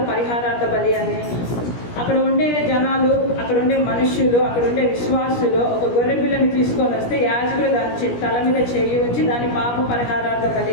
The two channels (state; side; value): late; right; 17 ms